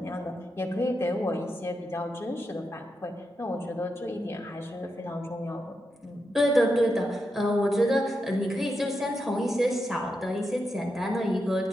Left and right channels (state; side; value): normal; both; correlation 0.86